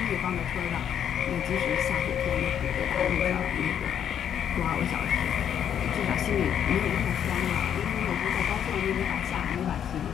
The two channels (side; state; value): right; quieter; 9.1 dB